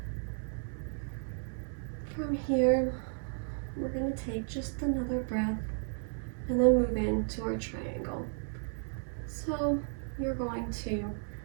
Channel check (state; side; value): silent; left; 55 dB below the other